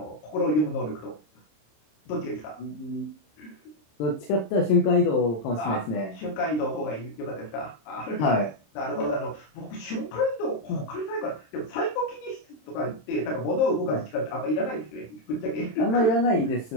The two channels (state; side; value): late; right; 26 ms